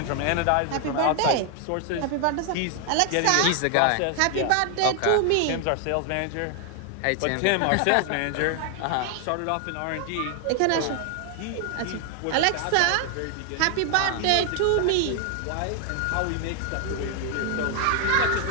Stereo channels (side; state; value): both; different; correlation 0.00